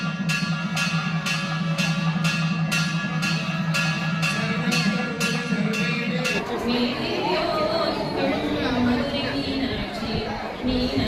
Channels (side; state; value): both; identical; correlation 1.00